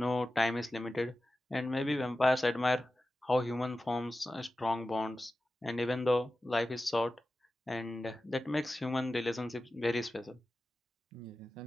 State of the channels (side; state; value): both; normal; correlation 0.94